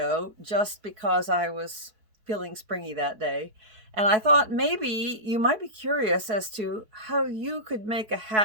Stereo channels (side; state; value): left; late; 4.7 ms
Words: just because I was feeling springy that day, and I thought maybe you might be curious as to how you could make a